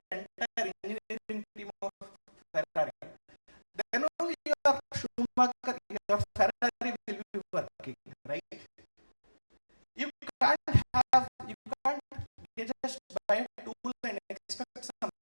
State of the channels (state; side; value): inverted; both; correlation -1.00